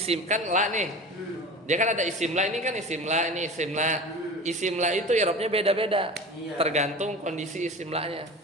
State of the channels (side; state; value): both; normal; correlation 0.34